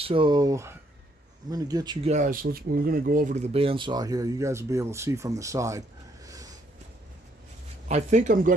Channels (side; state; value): both; normal; correlation 0.70